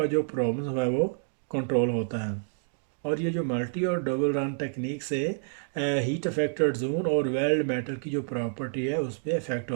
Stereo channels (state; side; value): silent; left; digital silence